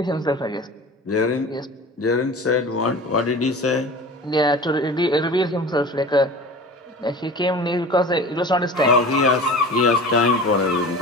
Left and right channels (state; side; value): normal; both; correlation 0.37